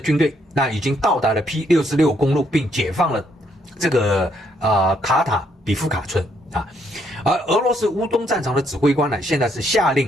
队已经到达了 P66 公路，并解放了这个卡塔比夫卡村而俄罗斯乌东战场的指挥官呢，现在是下令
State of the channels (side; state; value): both; normal; correlation 0.72